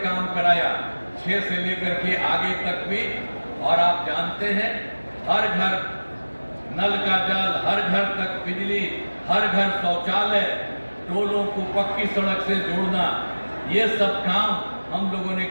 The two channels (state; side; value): inverted; both; correlation -1.00